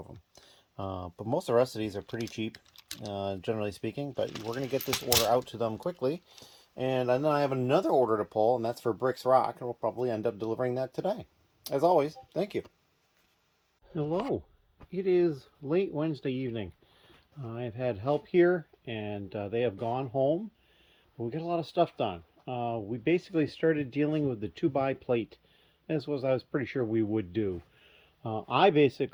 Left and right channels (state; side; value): identical; both; correlation 1.00